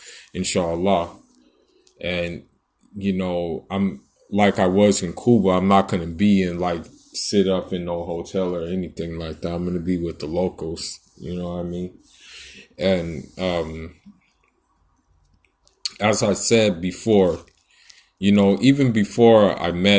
inshallah. And I'm like I was in Cuba. I'm not going to be in like sit up in no hotel or anything like that. I'm going to be with the locals, you know what I mean? And as I said before, even before I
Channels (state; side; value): identical; both; correlation 1.00